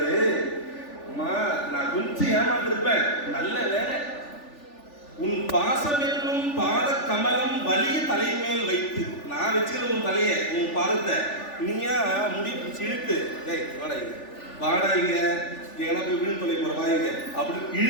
அம்மா நான் கொஞ்சம் ஏமாத்திருப்பேன், நல்ல வேலை உன் பாசம் என்னும் பாத கமலம் வலிய தலைமேல் வைத்து. நான் வச்சுக்கிற உன் தலைய, உன் பாதத்தை நீயா முடி பிடிச்சி இழுத்து, வாடாங்க எங்கன்னா போய் விழுந்து தொலை போற வாங்க அப்படின்னு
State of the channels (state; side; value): late; right; 3.4 ms